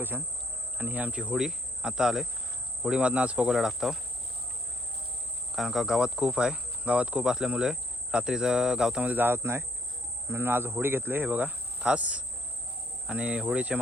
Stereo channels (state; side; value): normal; both; correlation 0.67